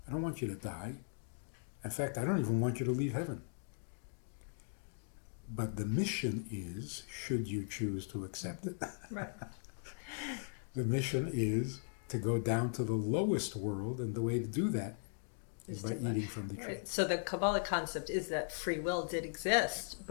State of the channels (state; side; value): silent; right; digital silence